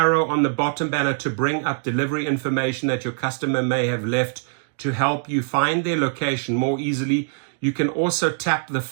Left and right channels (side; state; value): left; silent; digital silence